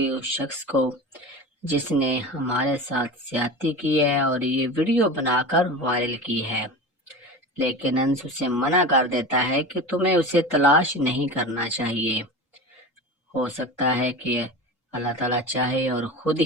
اس شخص کو جس نے ہمارے ساتھ زیادتی کی ہے اور یہ ویڈیو بنا کر وائرل کی ہے۔ لیکن انس اسے منع کر دیتا ہے کہ تمہیں اسے تلاش نہیں کرنا چاہیے، ہو سکتا ہے کہ اللہ تعالیٰ چاہے اور خود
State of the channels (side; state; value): both; normal; correlation 0.30